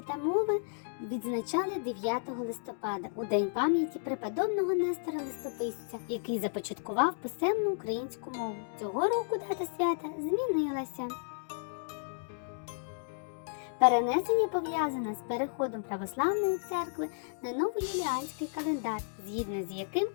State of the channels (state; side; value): silent; right; digital silence